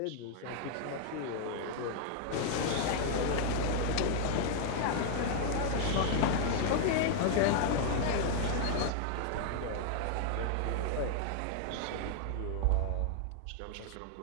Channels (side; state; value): both; different; correlation 0.00